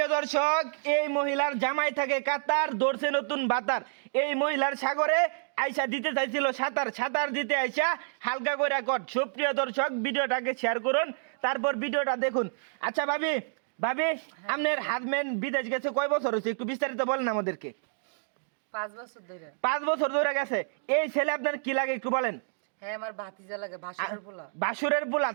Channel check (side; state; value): left; silent; digital silence